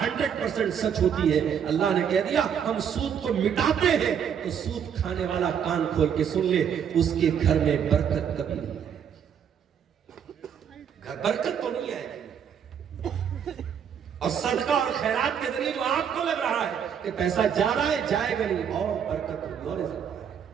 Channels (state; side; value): quieter; left; 8.1 dB